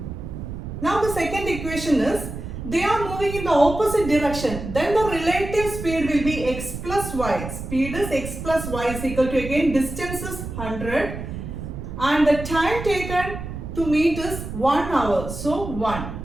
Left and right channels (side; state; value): right; noise; rumble, 8 dB below the sound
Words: Now the second equation is, they are moving in the opposite direction, then the relative speed will be x plus y. Speed is x plus y is equal to, again, distance is 100 and the time taken to meet is 1 hour. So 1.